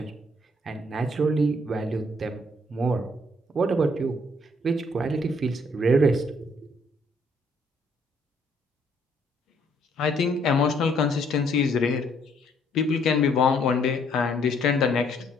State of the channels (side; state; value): both; normal; correlation 0.66